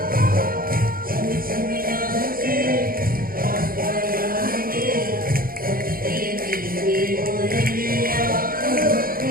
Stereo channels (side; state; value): left; late; 0.42 ms